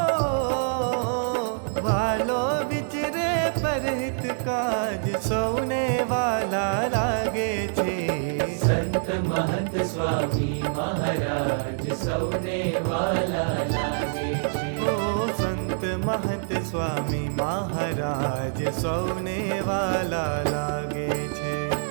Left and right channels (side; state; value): left; silent; 61 dB below the other